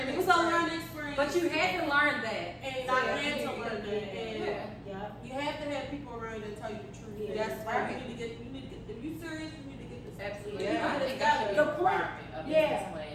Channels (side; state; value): both; identical; correlation 1.00